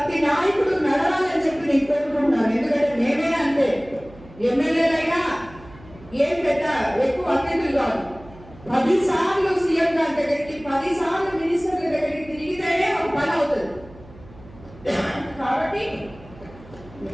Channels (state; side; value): noise; right; hum, 21 dB below the sound